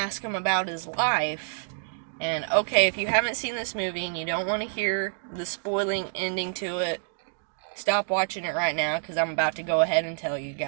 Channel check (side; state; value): left; silent; digital silence